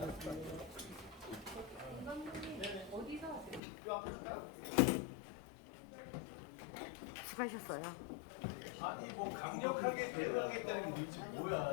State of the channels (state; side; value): drops out; right; at 3.6 s